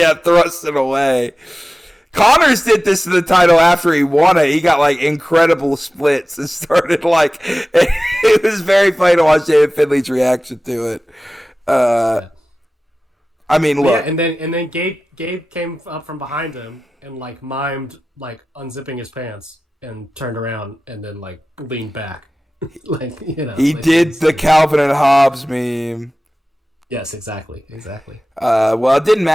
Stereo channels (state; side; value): normal; both; correlation 0.96